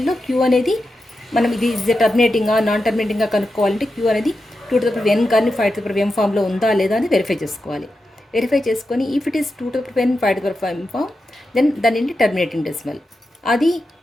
q అనేది మనం ఇది టర్మినేటింగా నాన్ టర్మినేటింగ్గా కనుక్కోవాలంటే q అనేది 2 to the power n కానీ 5 to the power m ఫామ్లో ఉందా లేదా అని వెరిఫై చేసుకోవాలి. వెరిఫై చేసుకొని if it is 2 to the power n 5 to the power m form, then దాని ఏంటి టర్మినేటింగ్ డెసిమల్. అది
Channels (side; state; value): both; normal; correlation 0.89